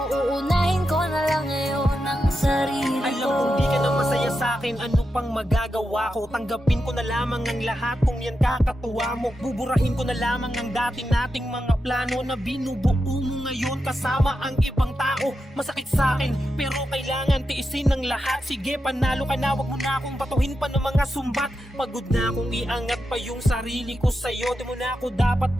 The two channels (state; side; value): normal; both; correlation 0.88